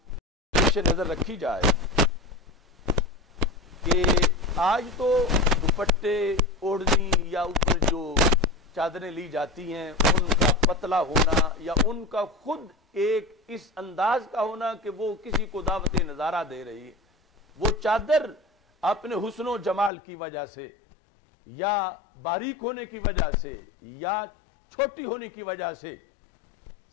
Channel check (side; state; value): right; drops out; at 19.9 s